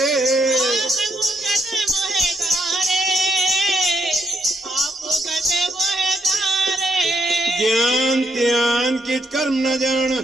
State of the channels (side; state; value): both; normal; correlation 0.77